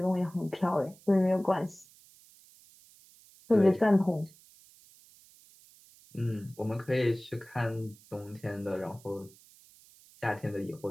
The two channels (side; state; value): right; noise; hiss, 25 dB below the sound